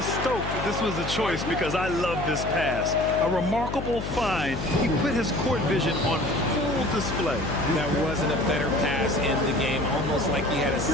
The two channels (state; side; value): noise; left; hum, 6 dB below the sound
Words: stoked that this was a choice because I love this pass. A remarkable find. He put his court vision on full display. That wasn't a better pass in the game, almost like he had a